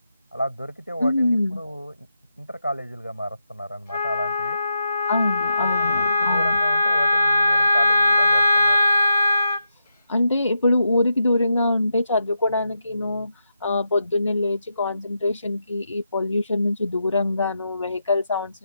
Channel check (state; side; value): inverted; both; correlation -0.85